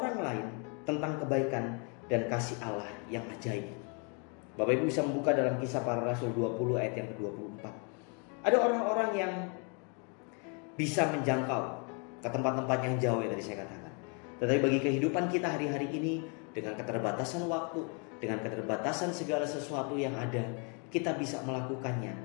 lain tentang kebaikan dan kasih Allah yang ajaib. Bapak Ibu bisa membuka dalam Kisah Para Rasul 20 ayat yang ke-24. Ada orang-orang yang bisa menjangkau ke tempat-tempat yang jauh yang tadi saya katakan. Tetapi bagi kehidupan kita hari-hari ini, dengan keterbatasan waktu, dengan keterbatasan segala sesuatu yang ada, kita bisa melakukannya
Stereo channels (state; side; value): quieter; right; 36.7 dB